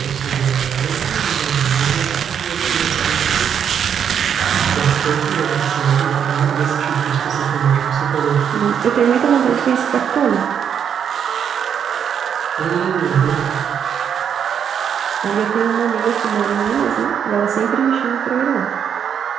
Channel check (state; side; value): quieter; left; 8.1 dB